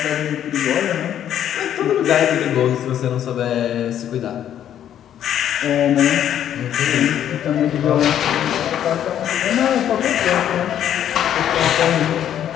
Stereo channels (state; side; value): quieter; right; 10.4 dB